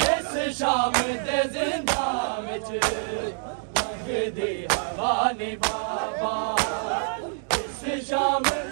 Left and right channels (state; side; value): silent; left; digital silence